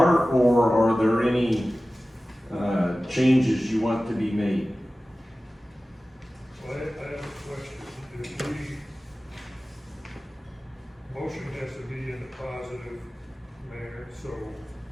or are there any changes you want to be made? Well, I have a question. If motion has to be in a positive manner, so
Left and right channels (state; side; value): normal; both; correlation 0.96